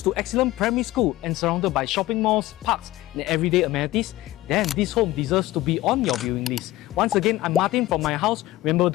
to excellent primary school and surrounded by shopping malls, parks and everyday amenities, then this home deserves to be on your viewing list. Once again, I'm Martin from my house. Remember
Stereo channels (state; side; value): quieter; right; 16.8 dB